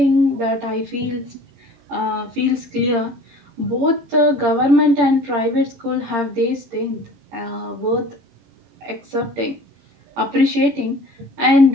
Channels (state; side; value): late; left; 17 ms